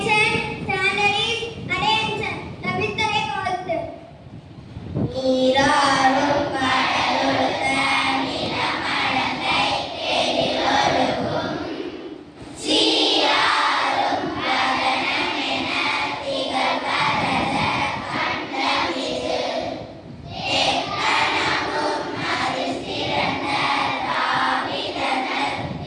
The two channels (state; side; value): identical; both; correlation 1.00